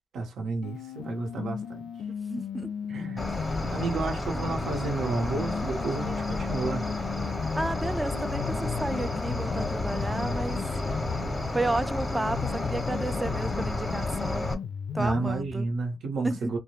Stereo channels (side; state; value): both; normal; correlation 0.85